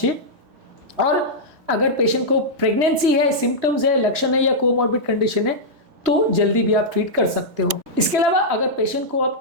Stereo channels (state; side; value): late; left; 1.6 ms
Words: और अगर पेशेंट को प्रेगनेंसी है, सिम्टम्स है, लक्षण है या कोमॉर्बिड कंडीशन है तो जल्दी भी आप ट्रीट कर सकते हो। इसके अलावा अगर पेशेंट को आप